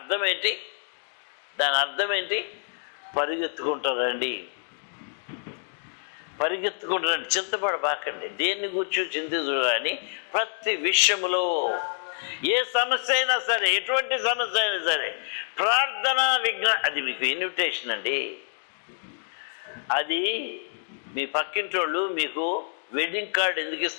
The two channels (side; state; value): right; silent; digital silence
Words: ఏంటి? పరిగెత్తుకుంటారండి. చింతపడబాకండి. దేన్ని కూర్చో చింతించు కానీ ప్రతి విషయములో, ఏ సమస్య అయినా సరే, ఎటువంటి సమస్య అయినా సరే, ప్రార్థన అది మీకు ఇన్విటేషన్ అండి. అది మీ పక్కింటోళ్ళు మీకు వెడ్డింగ్ కార్డు ఎందుకు